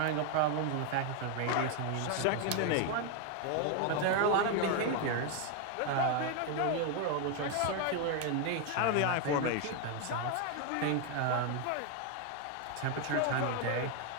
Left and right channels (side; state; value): both; different; correlation 0.01